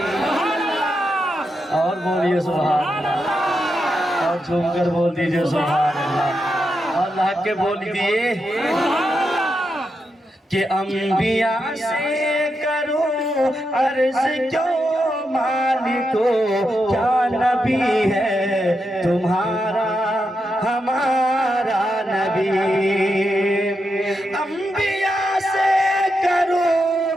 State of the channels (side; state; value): both; normal; correlation 0.85